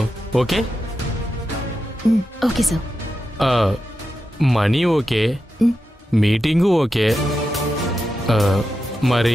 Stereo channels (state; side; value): normal; both; correlation 0.89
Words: Okay? Okay sir. Money okay, meeting okay.